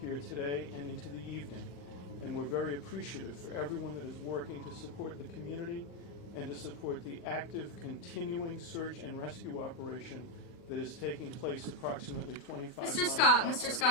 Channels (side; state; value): right; late; 40 ms